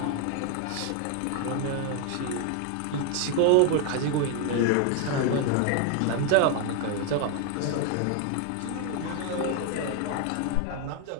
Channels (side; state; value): both; different; correlation 0.00